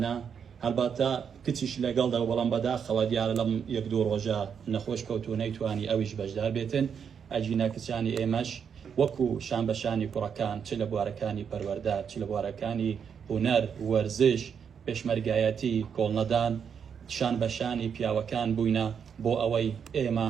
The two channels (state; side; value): quieter; left; 7.2 dB